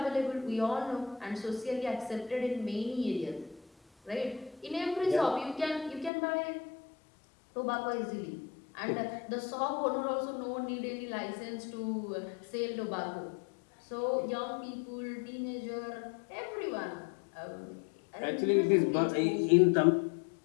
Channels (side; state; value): right; drops out; at 6.1 s